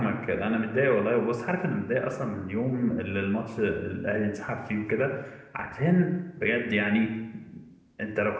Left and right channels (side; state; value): both; identical; correlation 1.00